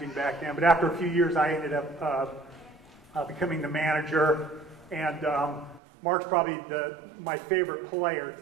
back then, but after a few years I ended up becoming the manager. And Mark's probably my favorite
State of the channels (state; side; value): drops out; left; at 5.8 s